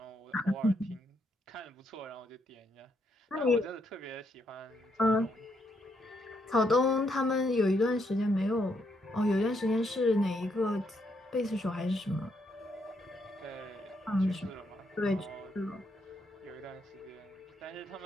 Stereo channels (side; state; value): both; normal; correlation 0.76